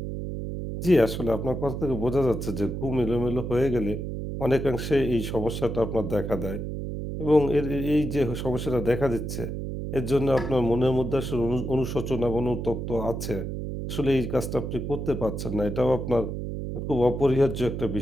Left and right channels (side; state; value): right; noise; hum, 5 dB below the sound